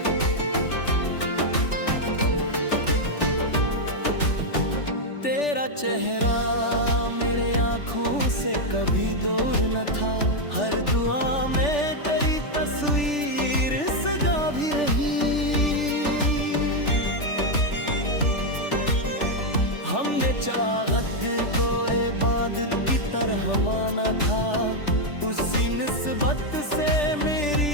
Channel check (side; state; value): right; late; 3.4 ms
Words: तेरा चेहरा मेरे आँखों से कभी दूर न था, हर दुआ में तेरी तस्वीर सजा भी रही। हमने चाहत को इबादत की तरह माना था, उसी निस्बत से